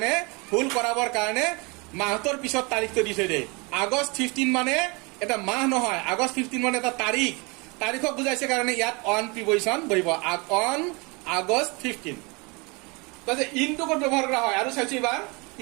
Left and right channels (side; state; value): left; quieter; 28.7 dB